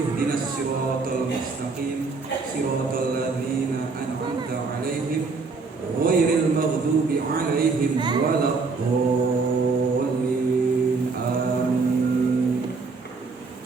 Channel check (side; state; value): left; quieter; 4.2 dB